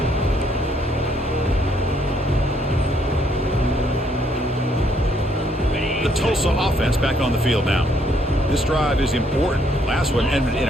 The Tulsa offense back on the field now. This drive is important. Last one ended in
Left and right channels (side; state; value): both; normal; correlation 0.69